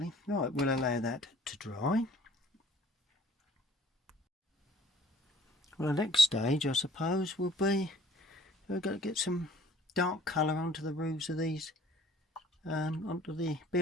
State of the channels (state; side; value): normal; both; correlation 0.55